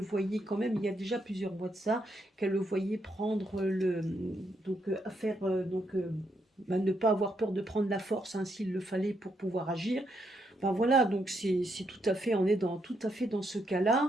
quand même, il y a déjà plusieurs mois de ça, qu'elle le voyait prendre à faire, ne pas avoir peur de prendre la force, hein, s'il le fallait pour pouvoir agir. Ben voilà, donc c'est tout à fait, on est tout à fait dans ce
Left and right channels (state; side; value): normal; both; correlation 0.78